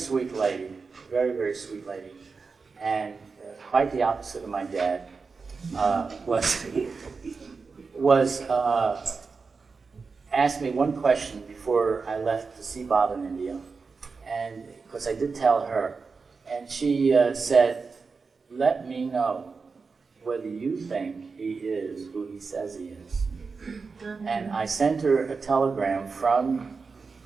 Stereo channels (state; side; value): quieter; left; 4.7 dB